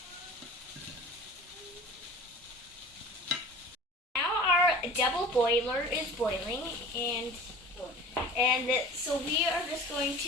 Now our double boiler is boiling, and so we are just going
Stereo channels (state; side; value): normal; both; correlation 0.41